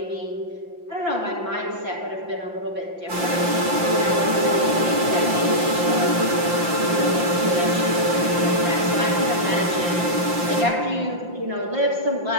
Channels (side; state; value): left; late; 5.8 ms